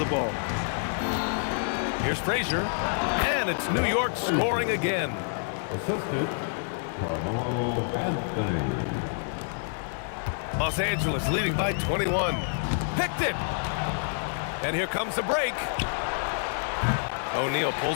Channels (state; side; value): silent; right; 59 dB below the other